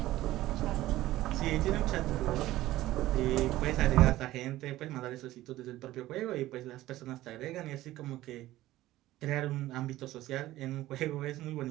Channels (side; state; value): left; quieter; 15.8 dB